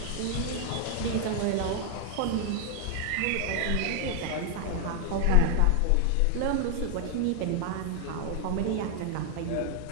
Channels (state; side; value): different; both; correlation 0.00